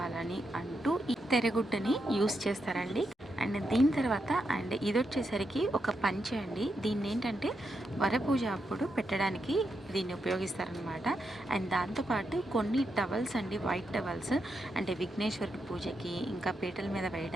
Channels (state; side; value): normal; both; correlation 0.84